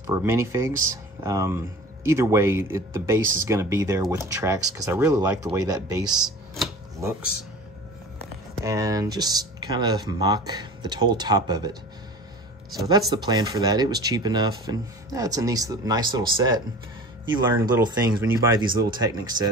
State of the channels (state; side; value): normal; both; correlation 0.38